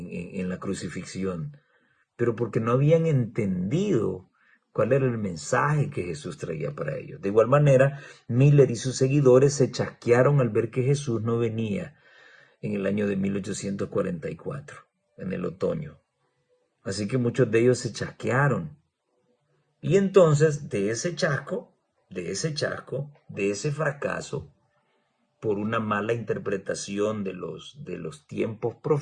la crucifixión, pero porque no habían entendido cuál era el mensaje que Jesús traía para ellos. De igual manera, Miller y sus seguidores se chasquearon al ver que Jesús no venía en el año de 1844, en el otoño. Así que muchos de ellos se chasquearon. Y entonces, de ese fracaso, por una mala interpretación de los tiempos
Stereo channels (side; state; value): both; identical; correlation 1.00